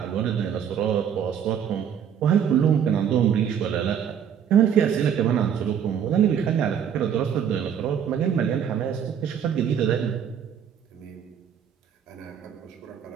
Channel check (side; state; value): left; quieter; 8.4 dB